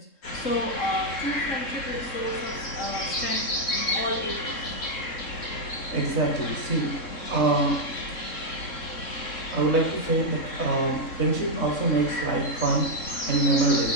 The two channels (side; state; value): right; late; 3.7 ms